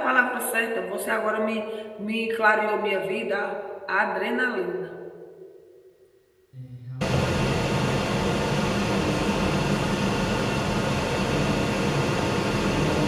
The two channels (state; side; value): identical; both; correlation 1.00